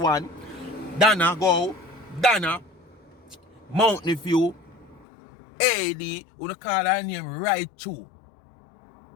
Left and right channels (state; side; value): drops out; right; at 5.1 s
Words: Donna go, Donna, Mountain View, AD, you call her name right through.